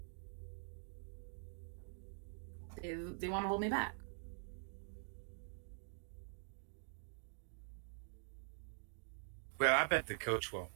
They want to hold me back. Well, I bet the coach won't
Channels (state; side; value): silent; left; digital silence